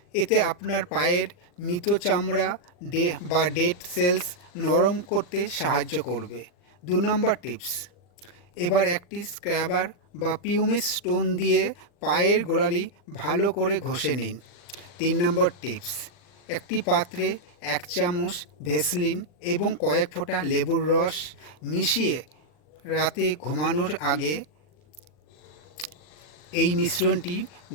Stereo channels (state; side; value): late; right; 40 ms